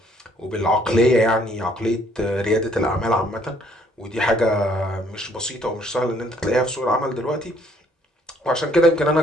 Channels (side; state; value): both; normal; correlation 0.64